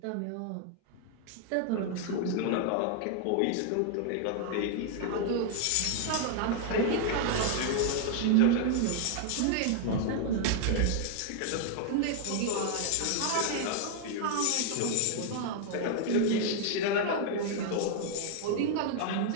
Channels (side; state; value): both; different; correlation 0.00